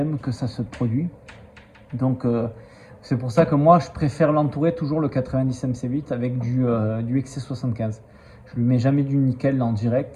que ça se produit. Donc c'est pour ça que moi je préfère l'entourer toujours le 90 MC8 avec du XC75. Je lui mets jamais du nickel en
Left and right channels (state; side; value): identical; both; correlation 1.00